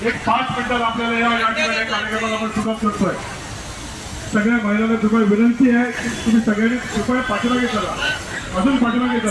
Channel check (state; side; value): identical; both; correlation 1.00